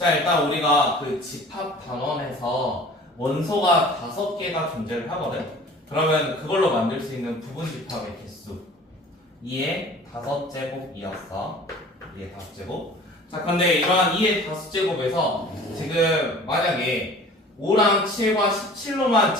일단 우리가 그 집합 단원에서 원소가 5개가 존재를 하거든. 그러면 그걸로 만들 수 있는 부분 집합의 개수 2의 5제곱이었어. 2의 5제곱. 자, 근데 이러한 2의 5제곱에서 지금 만약에 5랑 7과 17로만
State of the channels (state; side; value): normal; both; correlation 0.46